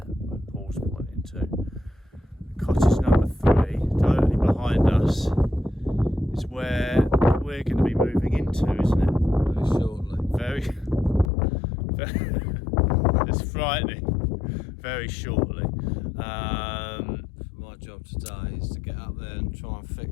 where Paul's pointing to. Cottage number 3, directly behind us, is where we're going to be moving into, isn't it? Very shortly. Very it's frightening. Very shortly. My job today is to get up there and try and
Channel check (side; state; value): right; drops out; at 11.3 s